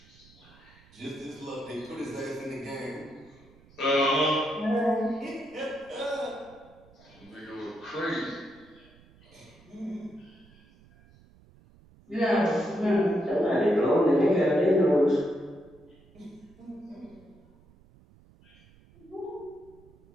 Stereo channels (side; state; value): right; noise; rumble, 27 dB below the sound